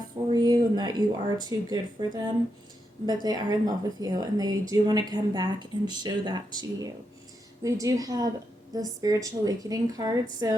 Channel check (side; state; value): both; normal; correlation 0.83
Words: for you and that you are too good for them, but they are in love with you and they do want to come back and show that to you. We do have the spiritual awakening card,